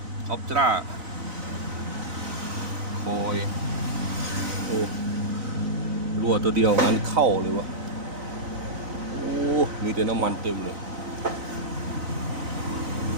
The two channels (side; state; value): left; late; 4.0 ms